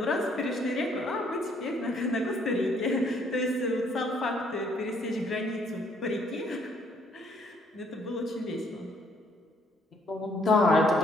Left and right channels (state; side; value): normal; both; correlation 0.66